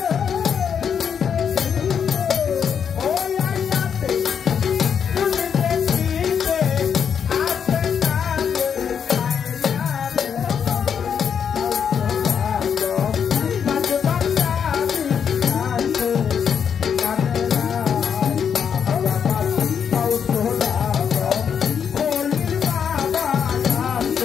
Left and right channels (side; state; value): right; quieter; 7.5 dB